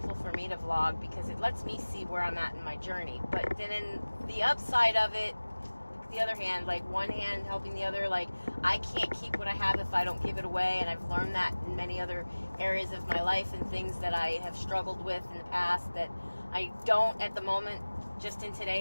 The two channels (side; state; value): both; inverted; correlation -1.00